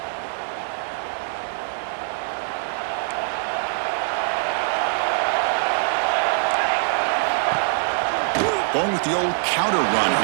Going with the old counter run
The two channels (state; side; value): silent; left; 59 dB below the other